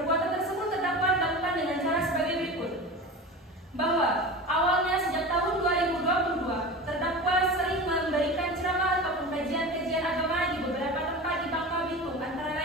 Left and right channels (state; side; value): normal; both; correlation 0.31